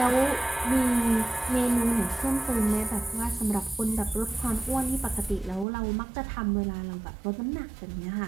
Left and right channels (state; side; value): drops out; left; at 5.7 s